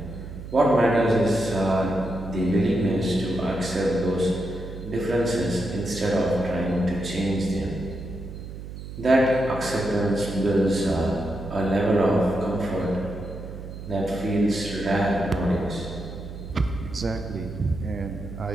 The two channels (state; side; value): noise; right; hum, 11 dB below the sound